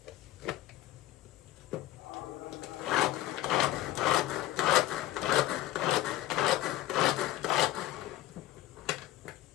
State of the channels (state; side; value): quieter; right; 15.0 dB